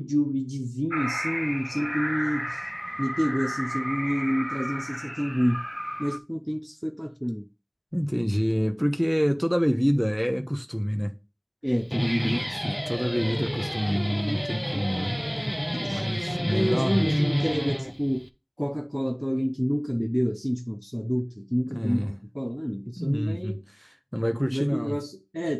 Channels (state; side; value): identical; both; correlation 1.00